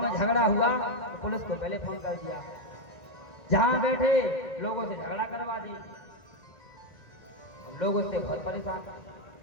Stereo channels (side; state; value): right; late; 1.9 ms